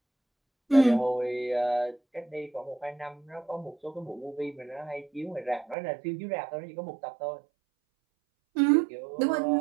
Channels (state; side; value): drops out; left; at 5.8 s